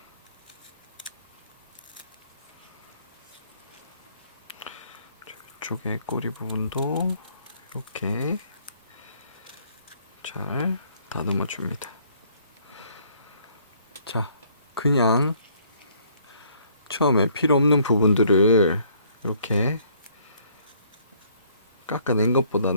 이쪽에 꼬리 부분도 이렇게 잘 다듬어 줍니다. 자, 그냥 처음에 필요 없는 부분들을 이렇게 깎아낸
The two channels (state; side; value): inverted; both; correlation -0.64